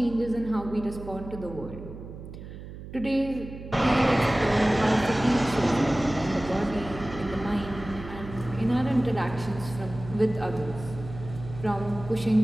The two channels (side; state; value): right; noise; hum, 12 dB below the sound